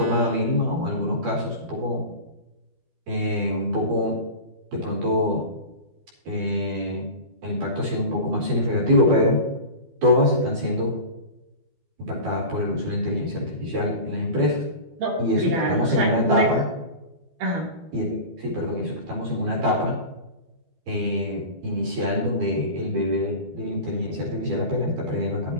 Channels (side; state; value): left; late; 12 ms